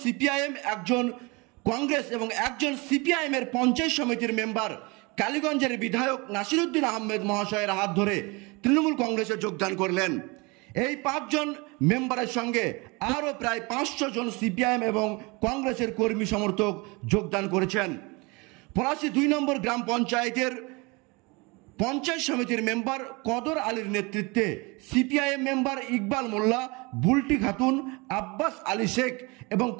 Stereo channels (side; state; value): left; quieter; 26.9 dB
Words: সিপিআইএম, একজন কংগ্রেস এবং একজন সিপিআইএম এর পঞ্চায়েত সমিতির মেম্বার কালীগঞ্জের বিধায়ক নাসিরউদ্দিন আহমেদ মহাশয়ের হাত ধরে তৃণমূল কংগ্রেসে যোগদান করলেন। এই ৫ জন মেম্বারের সঙ্গে আরও প্রায় ৫০০ জন সিপিআইএম এবং কংগ্রেসের কর্মী সমর্থক যোগদান করেছেন। পলাশী ২ নম্বর গ্রাম পঞ্চায়েতের পঞ্চায়েত সমিতির মেম্বার কদর আলীর নেতৃত্বে সিপিআইএম মেম্বার ইকবাল মোল্লা, বুলটি খাতুন, আব্বাস আলী শেখ এবং